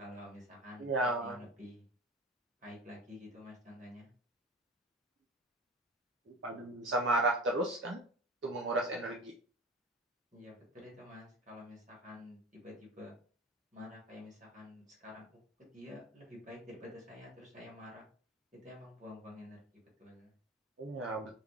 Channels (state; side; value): normal; both; correlation 0.34